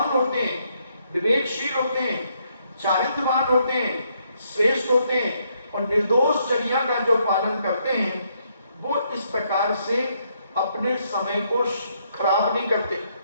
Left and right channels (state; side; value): inverted; both; correlation -0.74